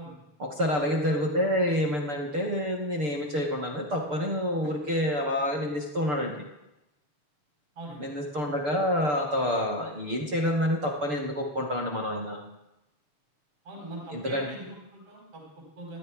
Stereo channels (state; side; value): late; left; 6.8 ms